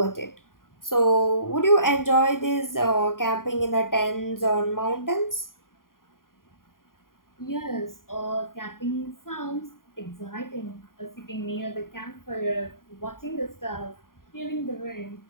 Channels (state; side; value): late; right; 0.91 ms